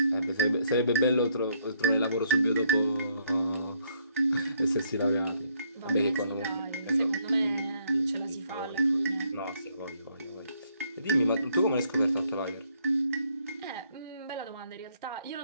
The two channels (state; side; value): inverted; both; correlation -0.70